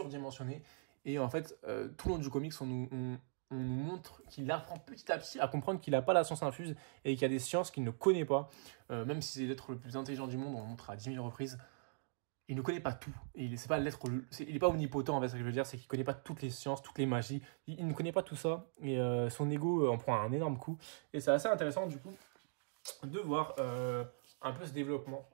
Et en fait, tout le long du comics, on nous montre qu'il apprend petit à petit à comprendre qu'il n'a pas la science infuse et qu'il y a des sciences qu'il ne connaît pas. Même si c'est l'être le plus intelligent du monde, on le montre à 10 000 reprises. Il ne connaît pas tout. Il n'est pas omnipotent, en fait, ce que je veux dire, c'est qu'il ne connaît pas toutes les sciences, toutes les magies. Il ne connaît pas tout ça. Et son ego en prend un énorme coup. Et c'est assez intéressant, du coup, de voir un peu ce développement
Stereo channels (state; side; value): silent; left; digital silence